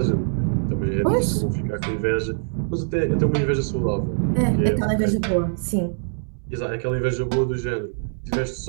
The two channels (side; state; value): left; silent; 63 dB below the other